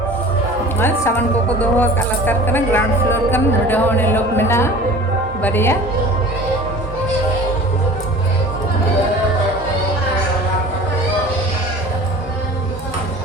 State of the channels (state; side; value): normal; both; correlation 0.41